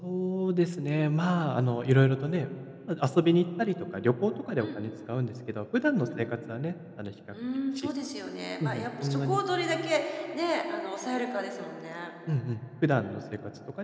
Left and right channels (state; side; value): identical; both; correlation 1.00